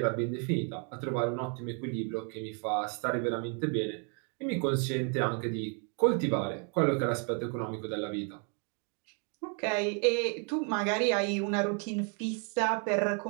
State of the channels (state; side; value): quieter; left; 39.6 dB